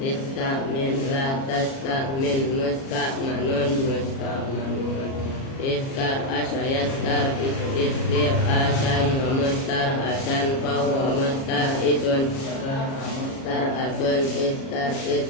la tastahmin mustahmanun mustahmanun. Istar'asa yastar istir'asan wa mustar'asan fahuwa musta'isun. Istar'asun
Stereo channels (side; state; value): right; late; 37 ms